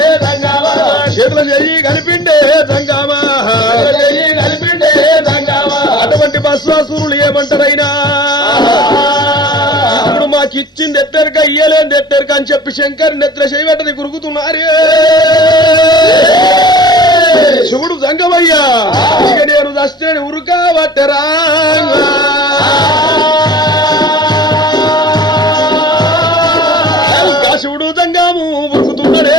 దంగామా చేతుల చెయ్యి కలిపిండే దంగామా కలిపిండే దంగామా అటువంటి బస్వాసురులు ఏమంటారైనా ఇప్పుడు మాకిచ్చింది ఎత్తెరక ఇయ్యలేని ఎత్తెరక అని చెప్పి శంకర్ నెత్తుల చేయబెట్టని గురుకుతున్నారే శివుడు దంగమయ్యా ఇక నేను దస్తేని ఉరుకా పట్టరా శివుడు దంగాము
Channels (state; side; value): normal; both; correlation 0.44